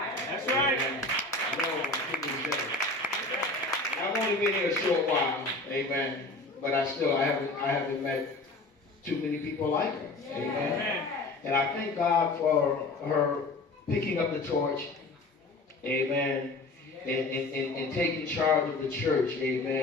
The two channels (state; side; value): quieter; right; 3.0 dB